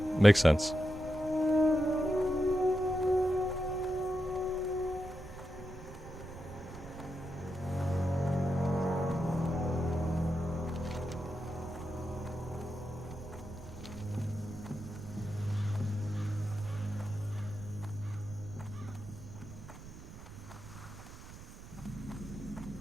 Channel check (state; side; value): noise; right; rumble, 14 dB below the sound